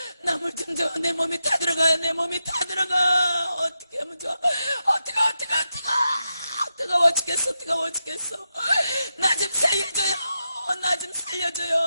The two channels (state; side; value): inverted; both; correlation -0.87